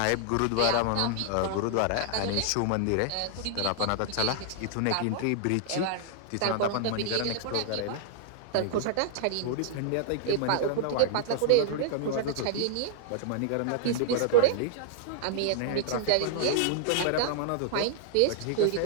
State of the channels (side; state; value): both; different; correlation -0.01